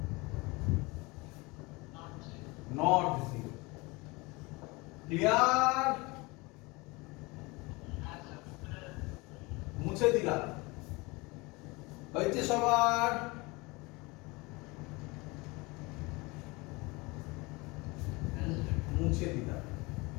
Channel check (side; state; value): right; quieter; 24.9 dB